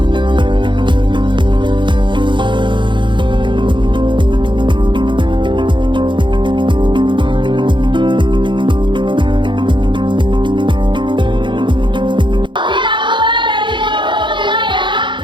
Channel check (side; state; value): left; late; 0.23 ms